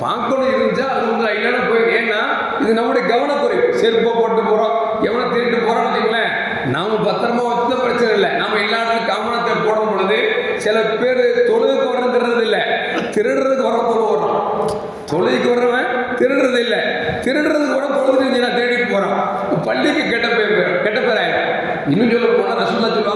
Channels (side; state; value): both; identical; correlation 1.00